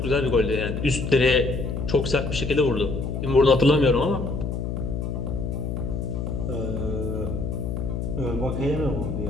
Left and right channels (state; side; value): noise; left; hum, 3 dB below the sound